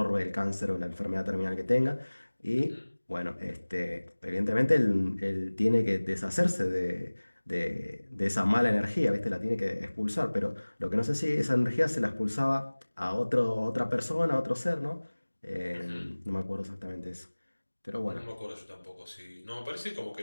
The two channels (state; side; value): inverted; both; correlation -1.00